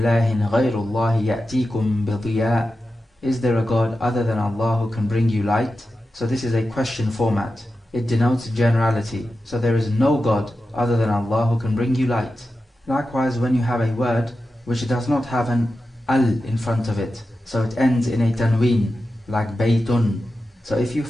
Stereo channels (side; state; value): both; normal; correlation 0.91